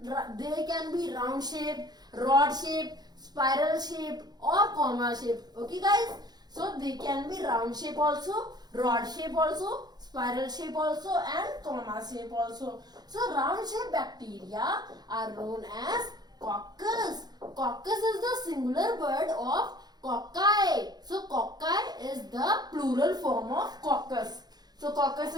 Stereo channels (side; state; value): left; late; 0.19 ms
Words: can be round shape, rod shape, spiral shape, or comma shape. Okay guys, so they can be round shape also, rod shape also, spiral shape also, and comma shape also. So round shape bacteria are known as coccus. Coccus is the singular word of cocci. So cocci is the plural form of coccus. So coccus